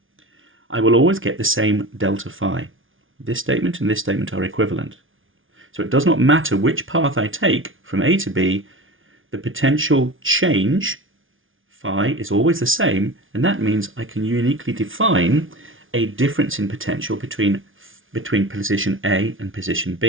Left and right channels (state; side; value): late; left; 0.58 ms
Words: I will always get the same delta phi. This statement and this statement are equivalent. So it does not matter which path I take from A to B, the potential change, phi, is always the same, and that means I can uniquely define a difference in potential between position A and position